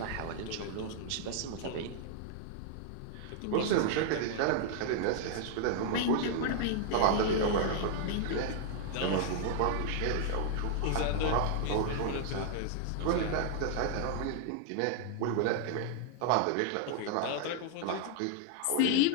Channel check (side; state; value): both; different; correlation 0.00